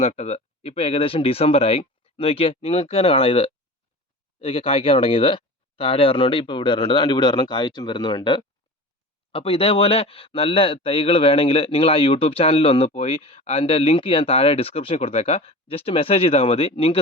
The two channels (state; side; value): normal; both; correlation 0.35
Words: നട്ടത്. ഇപ്പോൾ ഏകദേശം ഡിസംബറായി. നോക്കിയേ, നിങ്ങൾക്ക് തന്നെ കാണാം ഇതൊക്കെ കായ്ക്കാൻ തുടങ്ങിയത്. താഴെ ഒരെണ്ണമുണ്ട്, ഇപ്പോൾ ഇവിടെ ഒരെണ്ണമുണ്ട്, അതുകൊണ്ട് ഇവിടെ ഒരെണ്ണം കായ്ച്ചും വരുന്നുണ്ട്. അപ്പോൾ ഇതേപോലെ നല്ല തൈകൾ വേണമെങ്കിൽ നിങ്ങൾ ആ യൂട്യൂബ് ചാനലിൽ ഒന്ന് പോയി അതിൻ്റെ ലിങ്ക് ഞാൻ താഴെ ഡിസ്ക്രിപ്ഷനിൽ കൊടുത്തേക്കാം. ജസ്റ്റ് മെസ്സേജ് ചെയ്താൽ മതി.